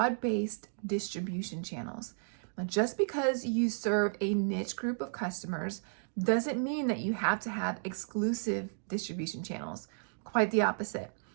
distribution channels. Now, just because you serve a niche group of customers doesn't mean that you have to have exclusive distribution channels. Quite the opposite.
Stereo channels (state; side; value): silent; left; digital silence